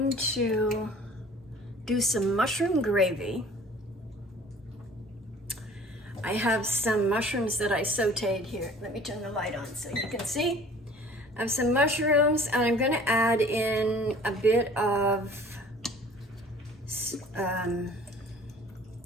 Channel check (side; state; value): both; normal; correlation 0.48